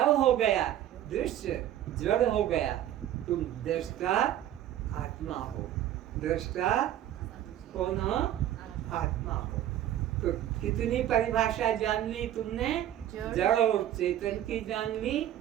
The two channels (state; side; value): quieter; left; 12.0 dB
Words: हो गया, दृश्य जड़ हो गया। तुम दृष्टा आत्मा हो। दृष्टा कौन हो? आत्मा हो। तो कितनी परिभाषा जान ली तुमने? जड़ और चेतन की जान ली,